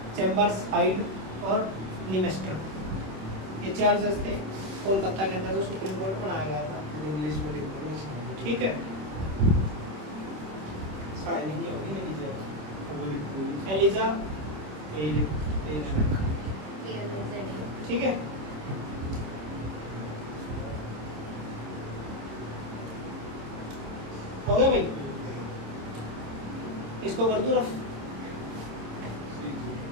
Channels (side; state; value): left; late; 26 ms